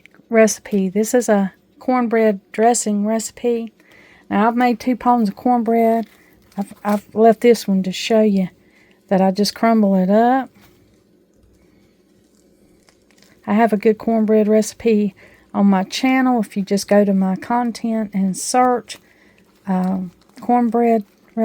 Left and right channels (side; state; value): both; identical; correlation 1.00